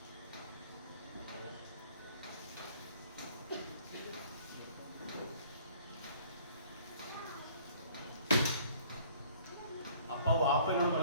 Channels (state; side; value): inverted; both; correlation -0.55